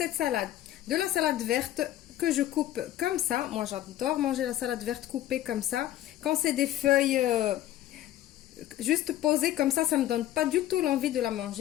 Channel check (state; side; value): quieter; right; 13.4 dB